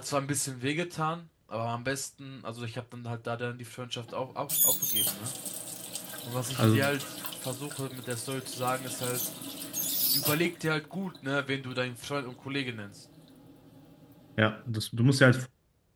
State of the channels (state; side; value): identical; both; correlation 1.00